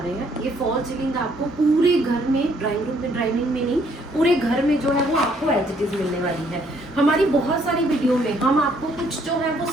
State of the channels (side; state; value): both; normal; correlation 0.66